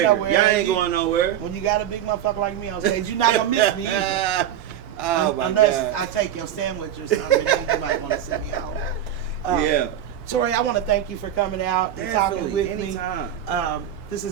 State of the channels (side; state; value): left; quieter; 10.5 dB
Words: nowhere. Y'all ain't going nowhere. When you got a big motherfucker like me on stage, you're not gonna miss me either. Unless I take your sandwich or something, then you might want to sit me out. Yeah. Tori, I want to thank you for coming out and talking with anytime. me. This